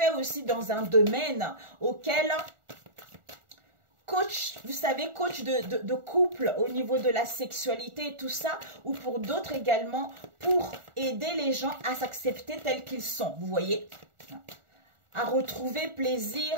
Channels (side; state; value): left; late; 1.4 ms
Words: aussi dans un domaine auquel... Coach, vous savez, coach de couple au niveau de la sexualité et tout ça, ou pour d'autres également, pour aider les gens à s'accepter tels qu'ils sont, vous voyez, à retrouver plaisir,